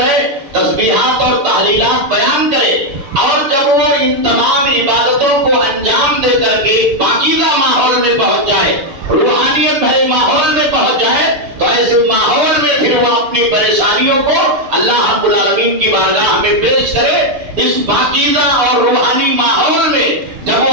تسبیحات اور تحلیلات بیان کرے، اور جب وہ ان تمام عبادتوں کو انجام دے کر کے پاکیزہ ماحول میں پہنچ جائے، روحانیت بھرے ماحول میں پہنچ جائے، تو ایسے ماحول میں پھر وہ اپنی پریشانیوں کو اللہ رب العالمین کی بارگاہ میں پیش کرے۔ اس پاکیزہ اور روحانی ماحول میں جب وہ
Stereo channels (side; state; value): left; late; 7.0 ms